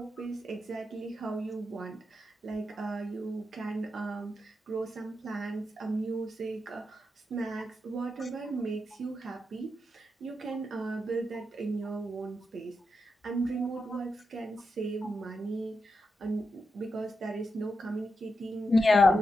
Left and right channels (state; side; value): normal; both; correlation 0.86